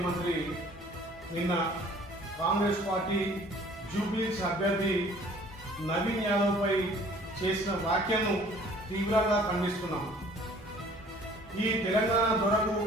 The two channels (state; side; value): normal; both; correlation 0.53